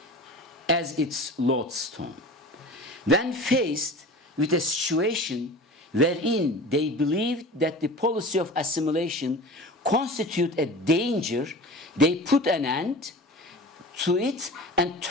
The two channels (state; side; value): normal; both; correlation 0.37